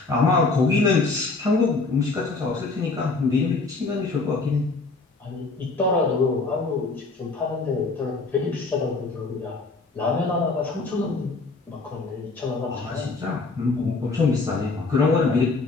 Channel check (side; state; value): right; quieter; 3.8 dB